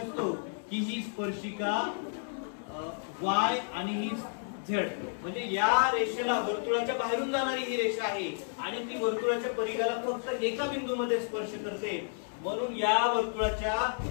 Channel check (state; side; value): silent; right; digital silence